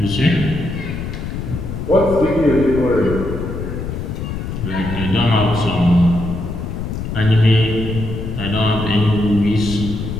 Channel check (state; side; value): noise; left; rumble, 6 dB below the sound